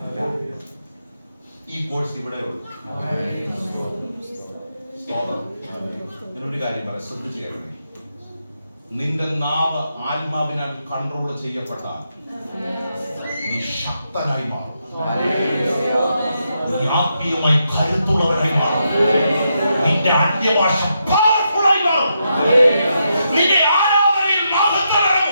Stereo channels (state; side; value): inverted; both; correlation -0.82